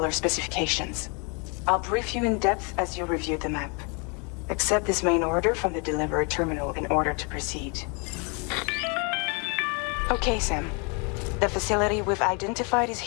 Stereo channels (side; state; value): right; quieter; 34.3 dB